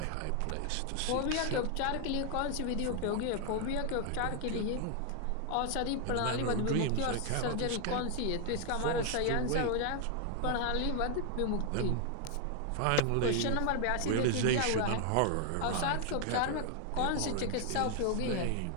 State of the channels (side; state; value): both; different; correlation 0.00